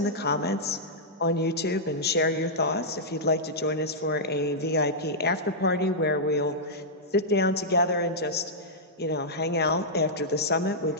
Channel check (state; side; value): normal; both; correlation -0.10